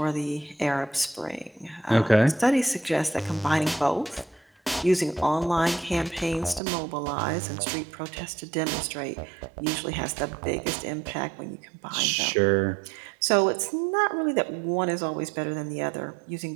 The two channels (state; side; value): drops out; left; at 6.6 s